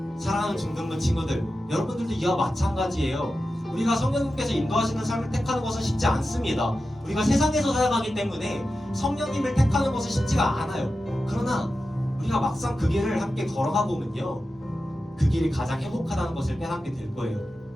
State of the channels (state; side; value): normal; both; correlation 0.92